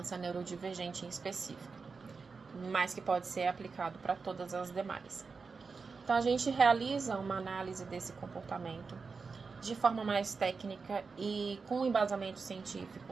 neurodivergente em específico, mas que pode ser aplicado para todas as demais. Então, a gente realiza uma análise desse comportamento de forma mais técnica e com embasamento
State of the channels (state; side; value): quieter; left; 4.8 dB